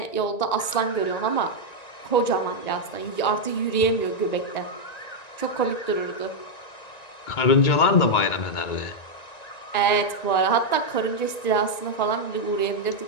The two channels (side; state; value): right; late; 1.9 ms